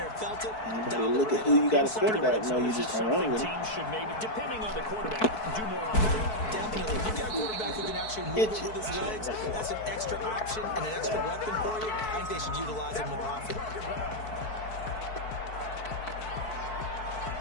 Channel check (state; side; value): late; right; 4.6 ms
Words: felt it. Anybody look at who you got a quarterback, no, you just gonna run with it. Teams should maybe, depending on the quarterback, do more often. Definitely. If you got a quarterback who can actually move it with his legs, that's an extra option and an extra weapon for you. I think they should utilize it more often.